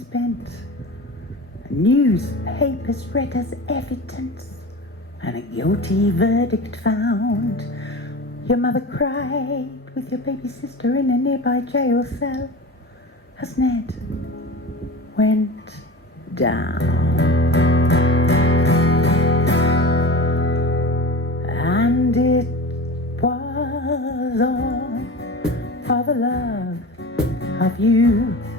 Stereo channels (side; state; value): both; normal; correlation 0.32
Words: bent. Newspapers read as evidence, and a guilty verdict found. Your mother cried with your baby sister in a nearby jail cell as Ned went down. And it was all for the love of you,